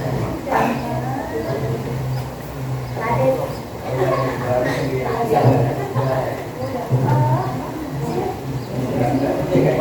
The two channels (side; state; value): both; identical; correlation 1.00